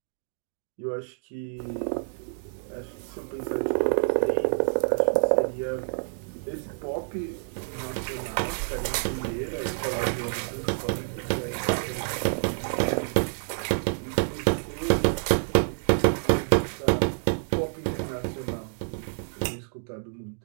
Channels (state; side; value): silent; left; digital silence